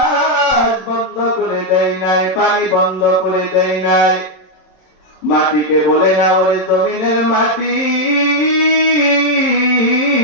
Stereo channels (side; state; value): right; late; 26 ms